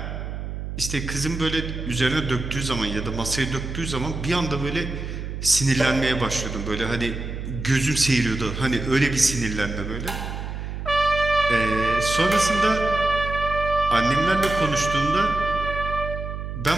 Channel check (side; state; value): right; noise; hum, 6 dB below the sound